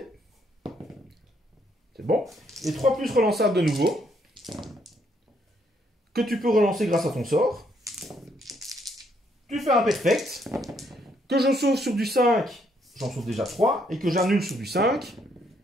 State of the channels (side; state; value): both; normal; correlation 0.71